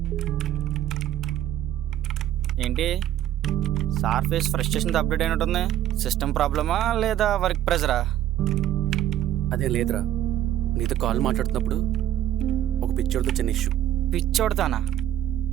ఏంటి సార్ ఫేస్ ఫ్రస్ట్రేషన్తో అప్డేట్ అయినట్టుంది. సిస్టమ్ ప్రాబ్లమా లేదా వర్క్ ప్రెజరా? అదేం లేదురా, నీతో కాల్ మాట్లాడుతున్నప్పుడు ఒక పిక్చర్తో చిన్న ఇష్యూ. పిచ్చోడతానా?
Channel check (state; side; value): quieter; left; 12.0 dB